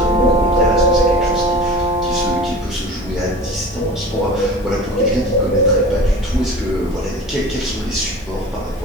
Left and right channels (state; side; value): normal; both; correlation 0.37